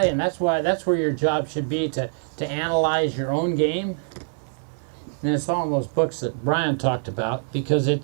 and that's where your job should be, to analyze your own game. And it's all in those books that Brian talked about, because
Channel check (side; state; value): left; silent; digital silence